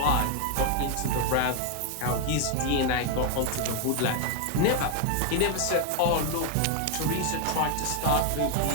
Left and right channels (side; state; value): both; different; correlation 0.00